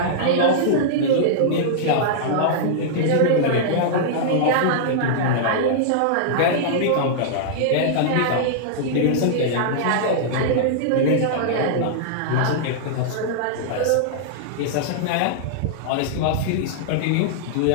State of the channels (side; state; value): both; different; correlation -0.02